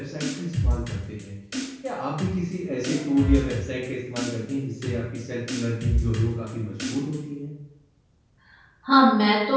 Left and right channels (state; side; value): identical; both; correlation 1.00